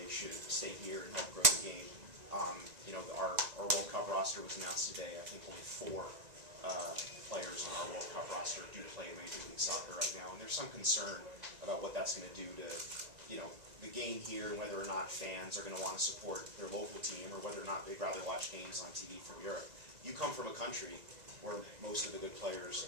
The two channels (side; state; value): left; late; 2.0 ms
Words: should stay here and help grow the game. You know, our World Cup roster was announced today. I think only 4 players on our World Cup roster do play in Major League Soccer right now, and there's some concern about what that's going to do to, you know, the game here, and whether or not fans are going to want to support their local team, or whether or not they'd rather watch games on TV from Europe. You come from a country where most of the good players